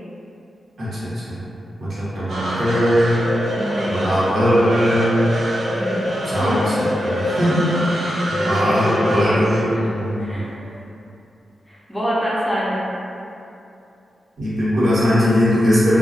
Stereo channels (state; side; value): normal; both; correlation 0.88